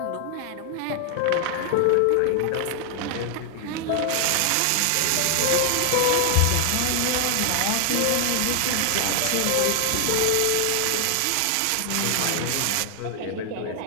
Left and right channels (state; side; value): different; both; correlation 0.00